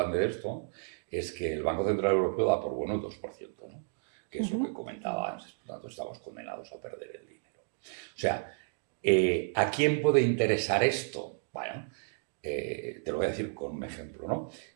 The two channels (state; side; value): silent; left; digital silence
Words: de esto es que el Banco Central Europeo da por bueno el 2%, ¿no? Que es lo que comentaba antes, por tanto estamos condenados a perder el dinero. O sea, ¿a quién puede interesar esto? Bueno, te lo voy a decir con un ejemplo, ¿no?